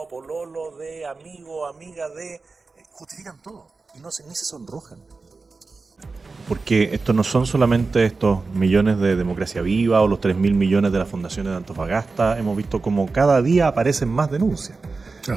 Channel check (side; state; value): left; quieter; 4.0 dB